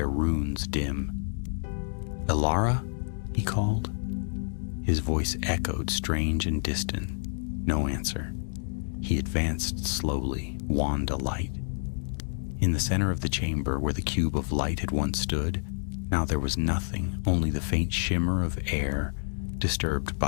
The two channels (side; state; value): right; silent; digital silence